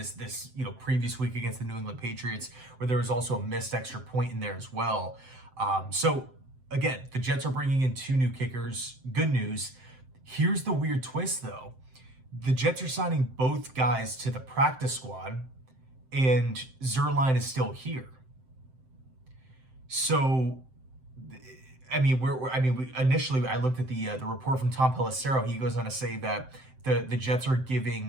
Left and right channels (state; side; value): late; left; 7.7 ms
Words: previous week against the New England Patriots, where there was also a missed extra point in there as well. So again, the Jets are bringing in 2 new kickers. Good news. Here's the weird twist, though. The Jets are signing both guys to the practice squad, and Zuerlein is still here. So, initially I looked at the report from Tom Pelissero. He goes on to say that the Jets are